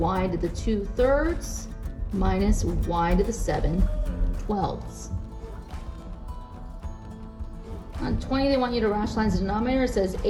to the 2/3 minus y to the 7/12. On 20, they want you to rationalize the denominator. It says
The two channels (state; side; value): identical; both; correlation 1.00